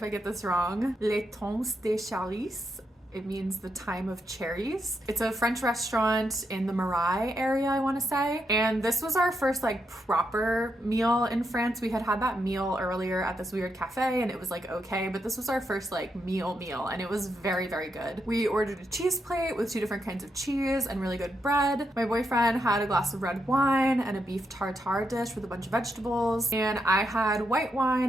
I get this wrong, Les Temps des Cherries. It means the time of cherries. It's a French restaurant in the Marais area, I want to say. And this was our first like proper meal in France. We had had that meal earlier at this weird cafe and it was like okay, but this was our first like meal and it was very, very good. We ordered a cheese plate with 2 different kinds of cheese and really good bread. My boyfriend had a glass of red wine and a beef tartare dish with a bunch of vegetables. And I had white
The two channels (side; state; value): both; normal; correlation 0.82